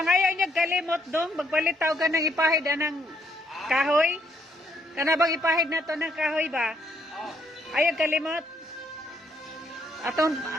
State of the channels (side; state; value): both; normal; correlation 0.71